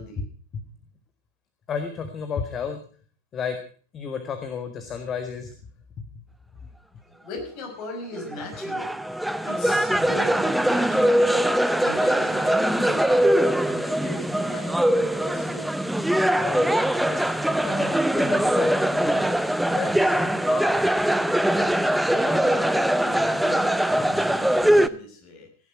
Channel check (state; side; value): normal; both; correlation 0.93